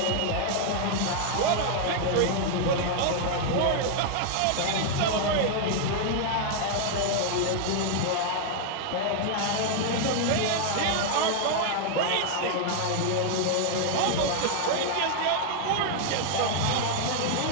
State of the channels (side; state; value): both; different; correlation 0.00